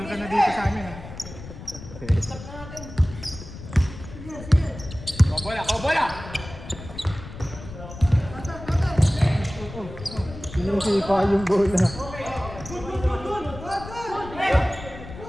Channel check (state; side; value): noise; left; rumble, 13 dB below the sound